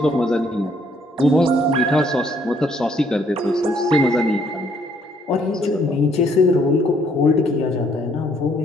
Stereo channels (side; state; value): both; normal; correlation 0.66